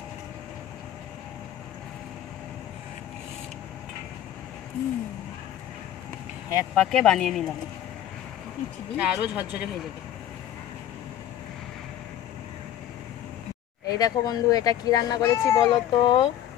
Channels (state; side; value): quieter; right; 11.4 dB